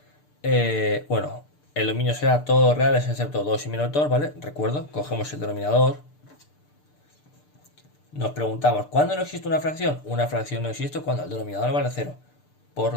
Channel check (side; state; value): right; late; 6.7 ms